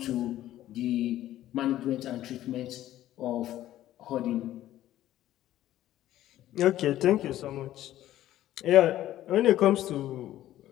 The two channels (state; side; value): quieter; right; 13.5 dB